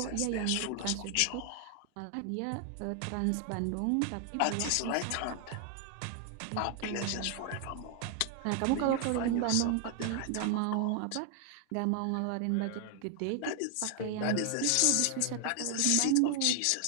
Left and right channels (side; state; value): both; different; correlation 0.00